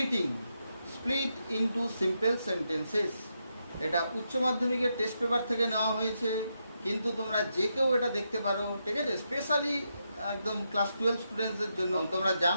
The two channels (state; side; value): inverted; both; correlation -0.83